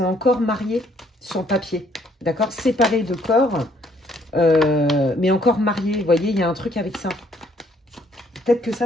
encore mariés sur le papier, d'accord, séparés de corps, mais encore mariés. Vous voyez, il y a un truc avec ça. Peut-être que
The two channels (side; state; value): both; normal; correlation 0.66